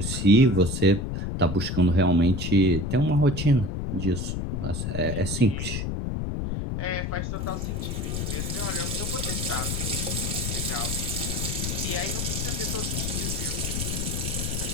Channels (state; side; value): noise; left; rumble, 2 dB below the sound